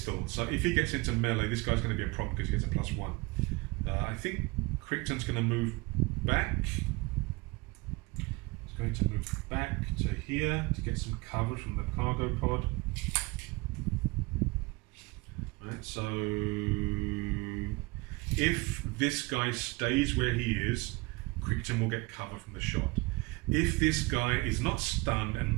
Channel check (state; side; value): quieter; left; 25.0 dB